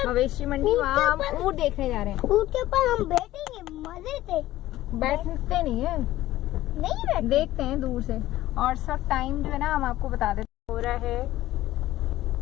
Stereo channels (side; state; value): right; quieter; 15.3 dB